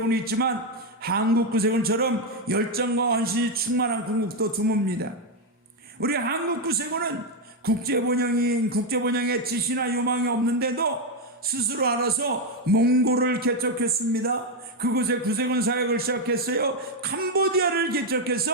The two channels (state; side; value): normal; both; correlation 0.04